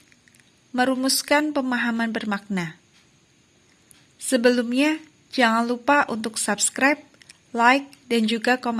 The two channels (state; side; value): identical; both; correlation 1.00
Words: merumuskan pemahaman bermakna. Sebelumnya, jangan lupa untuk subscribe, like, dan juga